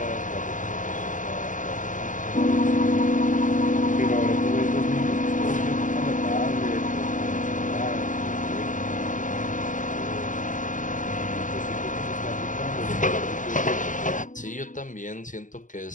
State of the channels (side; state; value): right; late; 0.37 ms